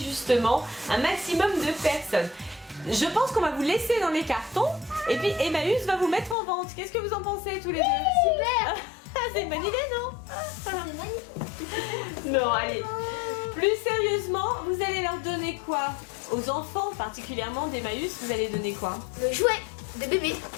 un maximum de personnes. Je pense qu'on va vous laisser dans les cartons. Et puis Emmaüs va vous mettre en vente. Qu'est-ce que vous en pensez tous les deux? Super. C'est une bonne idée, non? C'est magnifique. Non, allez. Plus sérieusement, vous allez leur donner quoi? Aux enfants, particulièrement d'Emmaüs, vous allez donner quoi? Le jouet de bébé.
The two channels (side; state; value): right; drops out; at 6.4 s